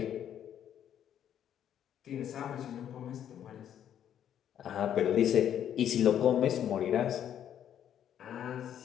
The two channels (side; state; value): right; quieter; 9.9 dB